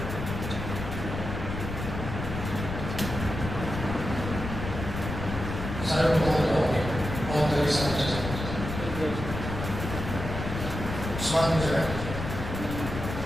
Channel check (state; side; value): noise; left; rumble, 6 dB below the sound